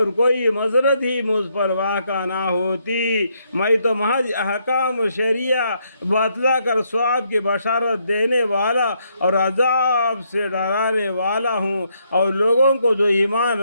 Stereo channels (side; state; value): both; inverted; correlation -0.75